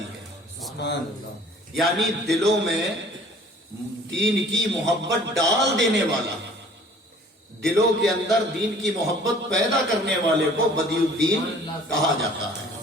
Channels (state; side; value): normal; both; correlation 0.52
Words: ہے، سبحان اللہ۔ یعنی دلوں میں دین کی محبت ڈال دینے والا، دلوں کے اندر دین کی محبت پیدا کرنے والے کو بدیع الدین کہا جاتا ہے۔